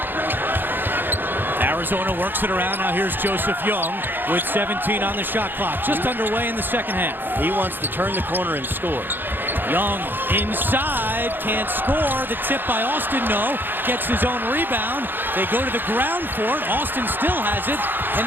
Arizona works it around. Now here's Joseph Young with 17 on the shot clock. Just underway in the second half. He wants to turn the corner and score. Young inside, can't score. The tip by Austin, no. Gets his own rebound. They go to the ground for it. Austin still has it. And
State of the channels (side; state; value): left; late; 0.095 ms